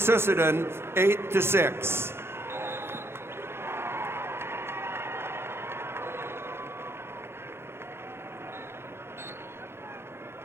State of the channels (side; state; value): left; late; 0.12 ms